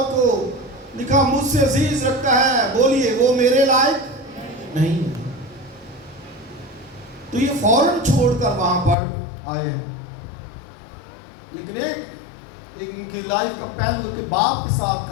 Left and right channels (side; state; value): right; drops out; at 9.0 s